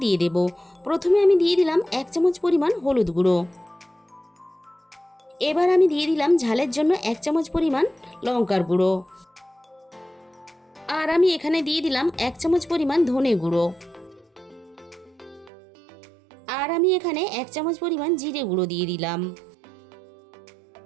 দিয়ে দেব। প্রথমে আমি দিয়ে দিলাম 1 চামচ পরিমাণ হলুদ গুঁড়ো। এবার আমি দিয়ে দিলাম ঝালের জন্য 1 চামচ পরিমাণ লঙ্কার গুঁড়ো। আর আমি এখানে দিয়ে দিলাম 1 চামচ পরিমাণ ধনে গুঁড়ো। আর আমি এখানে 1 চামচ পরিমাণ জিরে গুঁড়ো দিয়ে দিলাম।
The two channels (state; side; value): drops out; left; at 15.5 s